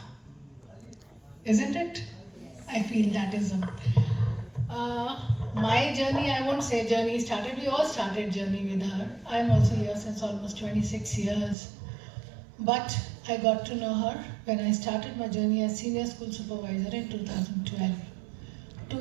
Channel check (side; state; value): left; drops out; at 11.6 s